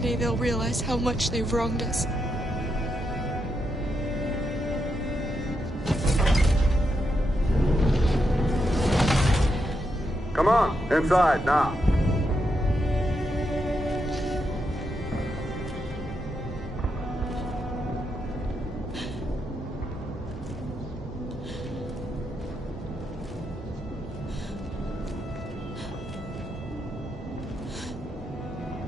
they'll realize how much they've wronged us. Come on, inside now.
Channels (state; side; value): normal; both; correlation 0.83